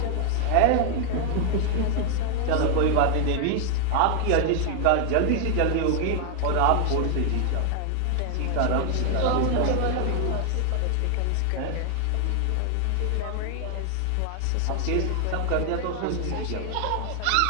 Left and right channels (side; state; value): both; different; correlation 0.00